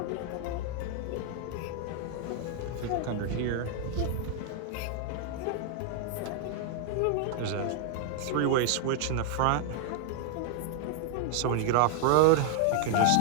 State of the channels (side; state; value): both; different; correlation 0.00